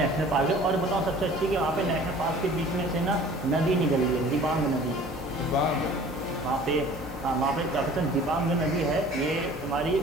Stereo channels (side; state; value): both; normal; correlation 0.48